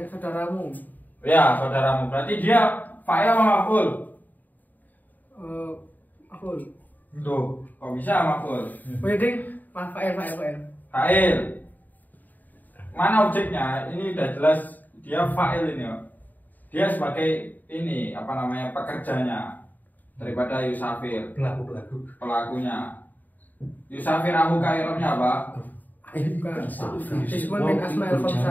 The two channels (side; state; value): right; late; 0.085 ms